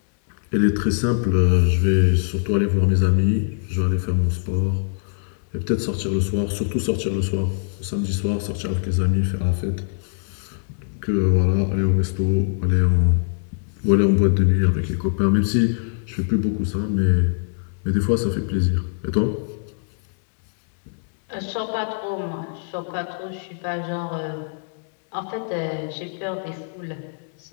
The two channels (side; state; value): right; silent; digital silence